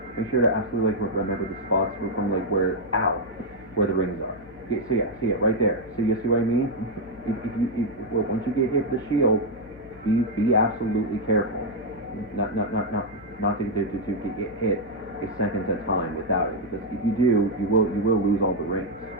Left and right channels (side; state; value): left; noise; hum, 23 dB below the sound